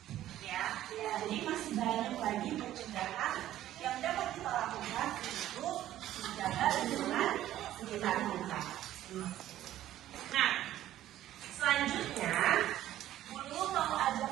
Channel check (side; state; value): left; quieter; 13.1 dB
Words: Ya, jadi masih banyak lagi pencegahan yang dapat kita lakukan untuk menjaga lingkungan sekitar kita. Nah, selanjutnya, Bulu mau ajak